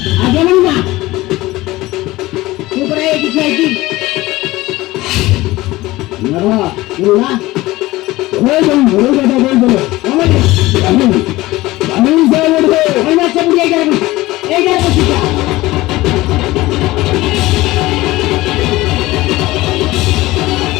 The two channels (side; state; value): right; quieter; 18.7 dB